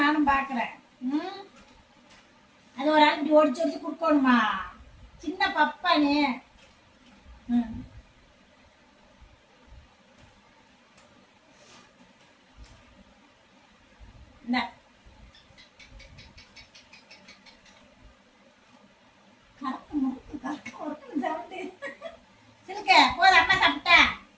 நானும் பாக்குறேன். அது ஒரு ஆள் இப்படி ஒடிச்சு ஒடிச்சு குடுக்கணுமா? சின்ன பப்பானு. கறக்கு முறுக்கு கறக்கு முறுக்குன்னு சவுண்டு. சிலுக்க போதும். அம்மா சாப்பிட்டா?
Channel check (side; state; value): both; identical; correlation 1.00